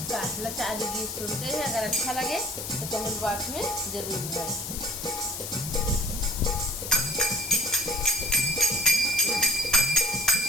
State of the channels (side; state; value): left; noise; hiss, 6 dB below the sound